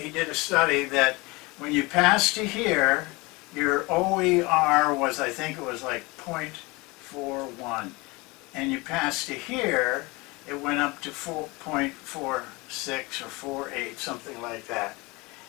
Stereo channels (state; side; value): quieter; right; 24.8 dB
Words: did a study that when you pass to here, your OER was, I think it was like 0.41, and you pass to here, it went up to 4.46 or 4.8, something like that.